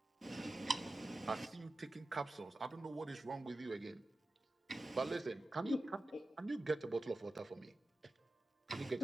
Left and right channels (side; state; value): both; normal; correlation 0.93